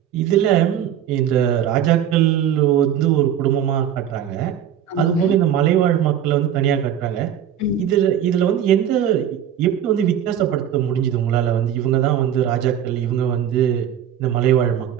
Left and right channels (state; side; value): quieter; left; 9.8 dB